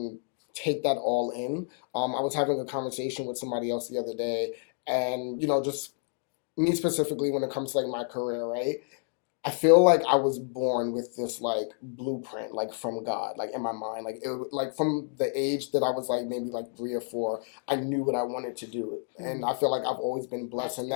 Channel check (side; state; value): right; silent; 56 dB below the other